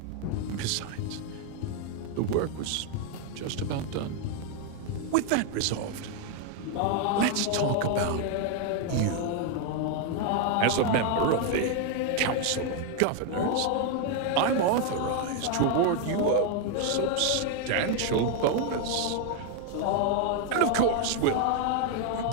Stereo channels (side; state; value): both; different; correlation 0.01